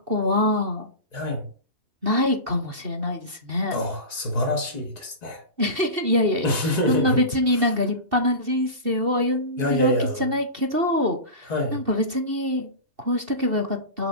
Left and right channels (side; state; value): left; late; 2.7 ms